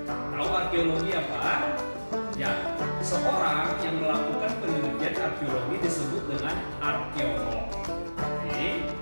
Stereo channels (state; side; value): inverted; both; correlation -1.00